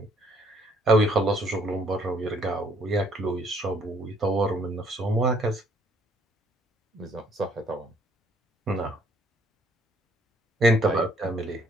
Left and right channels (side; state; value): both; normal; correlation 0.64